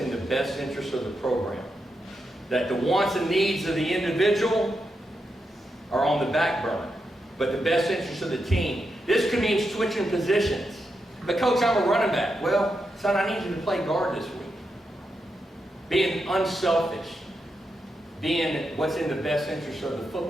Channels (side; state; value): both; normal; correlation 0.85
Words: the best interest of the program. That the wants and needs of the individual are on the back burner, but the best interest of the team. This could mean switching positions. But coach, I'm a running back. Well, son, I need you to play guard this week. Being unselfish. Being what's in the best interest of the